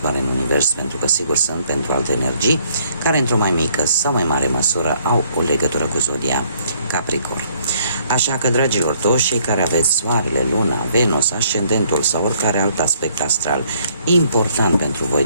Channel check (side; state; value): both; inverted; correlation -0.66